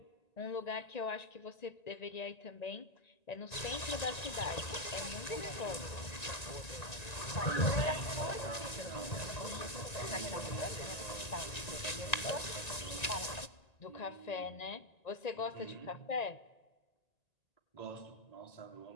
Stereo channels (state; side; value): late; right; 1.9 ms